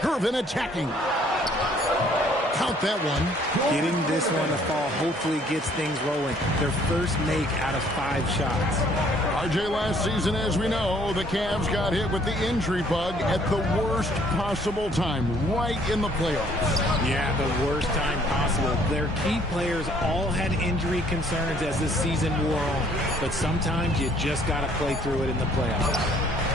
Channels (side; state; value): both; normal; correlation 0.61